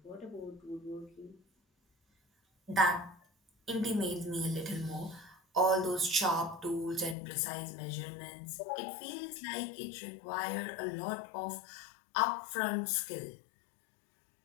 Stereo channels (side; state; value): right; drops out; at 7.2 s